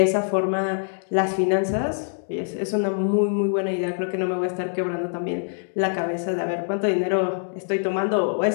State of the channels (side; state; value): right; silent; digital silence